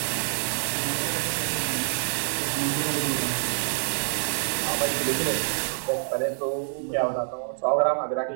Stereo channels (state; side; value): silent; left; digital silence